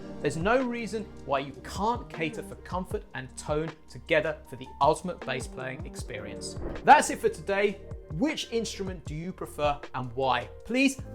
There's no reason why you can't cater for comfort and tone together for the ultimate bass playing experience. That's it for today. Which instrument do you prefer and why? Please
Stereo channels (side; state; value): both; identical; correlation 1.00